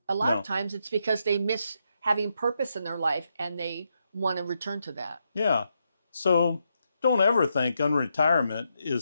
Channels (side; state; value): both; inverted; correlation -0.82